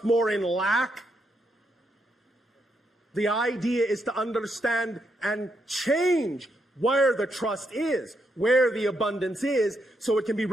more in lack? The idea is to understand and change where the trust is, where the abundance is, so it can be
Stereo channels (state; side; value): normal; both; correlation 0.79